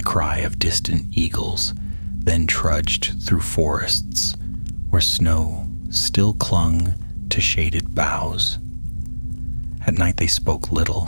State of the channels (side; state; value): both; inverted; correlation -1.00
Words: cry of distant eagles, then trudged through forests where snow still clung to shaded boughs. At night they spoke little,